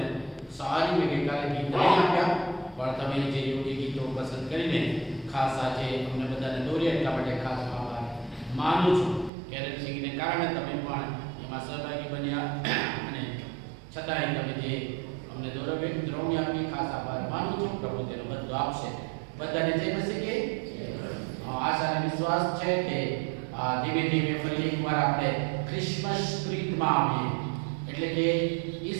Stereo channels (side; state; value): left; drops out; at 9.3 s